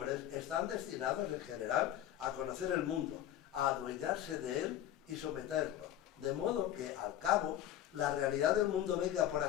están destinados en general a conocer el mundo, a adueñarse de él y someterlo, de modo que al cabo la realidad del mundo venga, por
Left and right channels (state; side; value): quieter; right; 11.7 dB